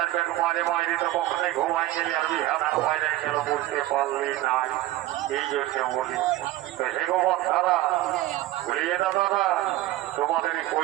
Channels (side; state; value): left; quieter; 16.1 dB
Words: ব্যাগ মারে মারি তো কখনোই ঘুমাই গেলি আর বিহার বাইরে গেল বুঝতে পারলি নাই এই জন্য বলি তো হে গোবর সারা ঘুরিয়ে দাদা তোমাদের